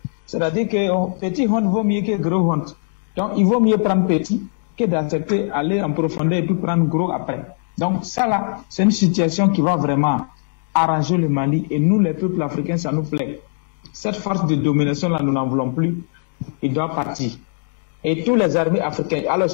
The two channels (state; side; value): silent; right; digital silence